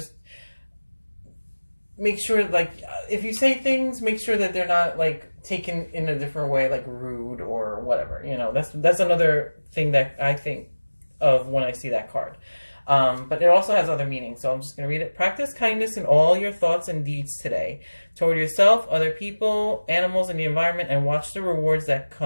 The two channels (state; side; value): inverted; both; correlation -1.00